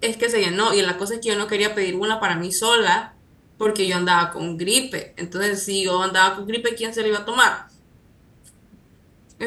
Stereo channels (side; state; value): both; identical; correlation 1.00